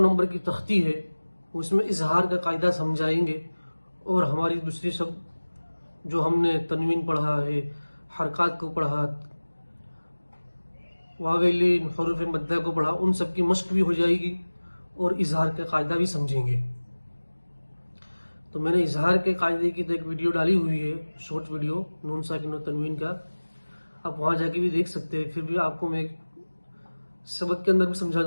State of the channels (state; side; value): inverted; both; correlation -1.00